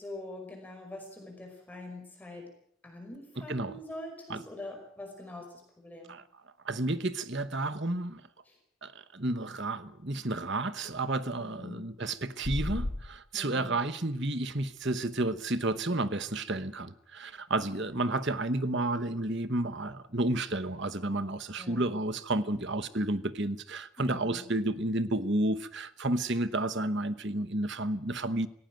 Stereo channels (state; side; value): normal; both; correlation 0.51